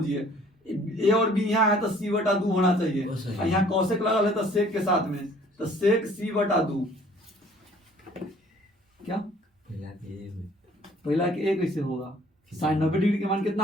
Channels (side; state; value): both; normal; correlation 0.55